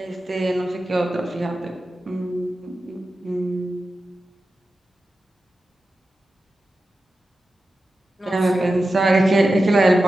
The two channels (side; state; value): both; normal; correlation 0.92